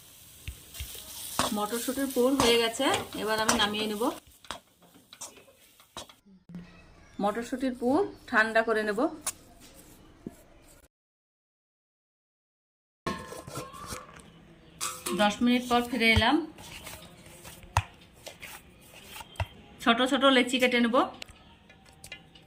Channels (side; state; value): both; identical; correlation 1.00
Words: মটরশুঁটির পুর হয়ে গেছে। এবার আমি নামিয়ে নেব। মটরশুঁটির পুর ঠান্ডা করে নেব। দশ মিনিট পর ফিরে এলাম। ছোট ছোট লেচি কেটে নেব।